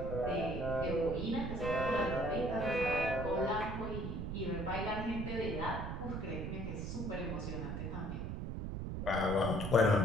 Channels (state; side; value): noise; right; rumble, 4 dB below the sound